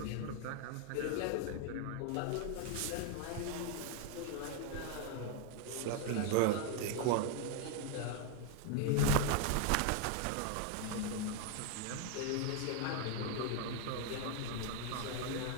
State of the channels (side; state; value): both; different; correlation 0.01